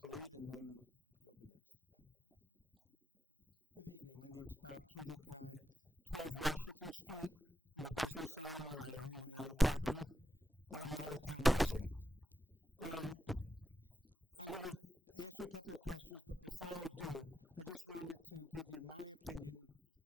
and then you'll be next. Good evening. My name's Bob Kudik, 12 Washington Street. I'm a business owner and I own my own property, but I'm not a town resident. I'm going to ask you a couple of questions, but before I do, I just wanted to give you my opinion,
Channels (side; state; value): both; normal; correlation 0.86